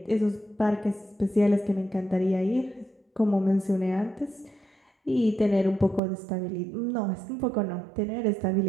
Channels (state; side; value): drops out; left; at 6.0 s